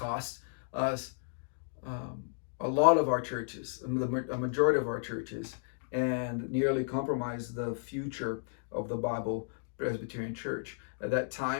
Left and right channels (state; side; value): silent; right; digital silence